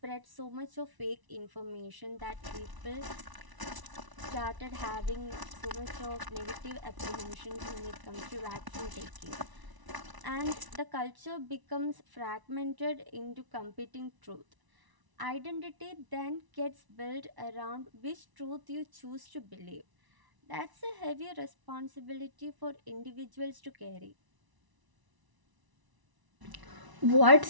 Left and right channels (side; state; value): left; late; 1.0 ms